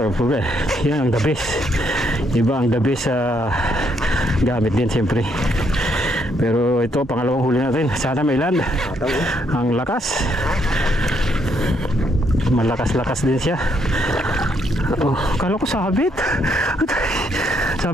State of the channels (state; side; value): normal; both; correlation 0.73